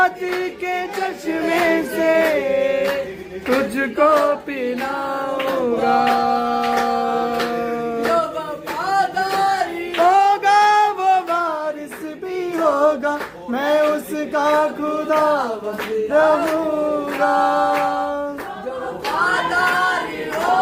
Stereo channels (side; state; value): both; identical; correlation 1.00